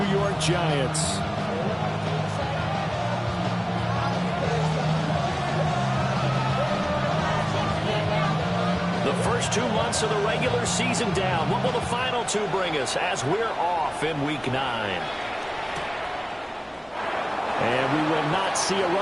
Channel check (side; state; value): both; identical; correlation 1.00